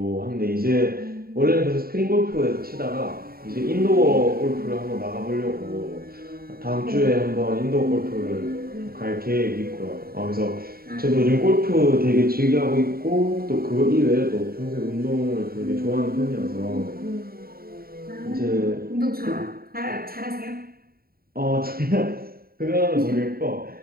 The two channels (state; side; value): late; left; 0.43 ms